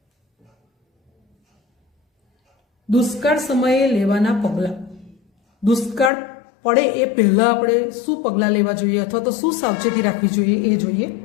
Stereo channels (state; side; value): drops out; right; at 6.1 s